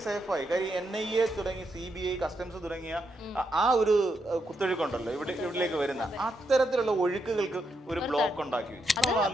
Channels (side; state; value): both; normal; correlation 0.81